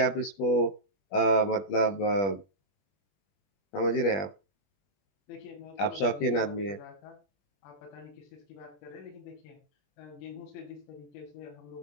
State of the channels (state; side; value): late; right; 21 ms